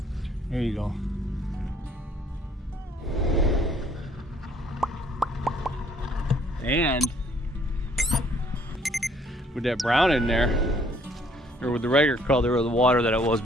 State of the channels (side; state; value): both; normal; correlation 0.63